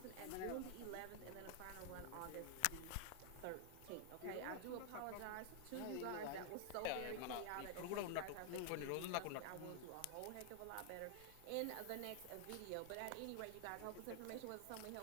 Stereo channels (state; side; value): different; both; correlation 0.00